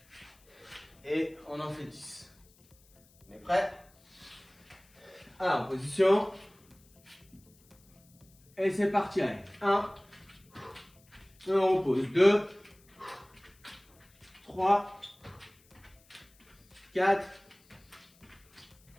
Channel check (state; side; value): noise; left; hiss, 30 dB below the sound